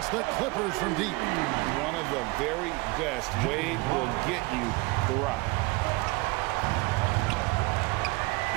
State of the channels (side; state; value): left; quieter; 24.3 dB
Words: the Clippers from deep. One of the very best. Wade will get you the rock.